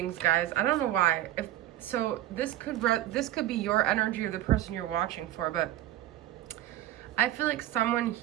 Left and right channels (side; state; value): left; quieter; 13.6 dB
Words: guys. I don't know why. So this could be your energy or the person you're watching for, but I feel like someone